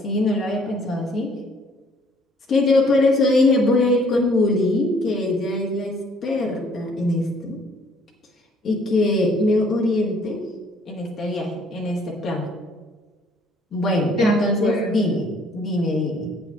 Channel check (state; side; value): normal; both; correlation 0.61